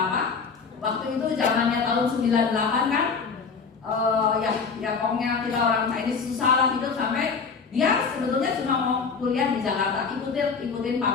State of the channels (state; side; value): quieter; right; 5.3 dB